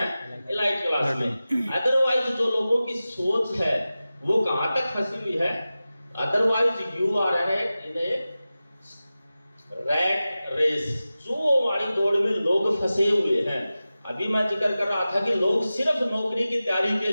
इलाइट क्लास में। अदरवाइज जो लोगों की सोच है वो कहां तक फंसी हुई है? Otherwise you are in a rat race. जो वाली दौड़ में लोग फंसे हुए हैं। अभी मैं जिक्र कर रहा था कि लोग सिर्फ नौकरी की तैयारी के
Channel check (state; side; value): inverted; both; correlation -0.95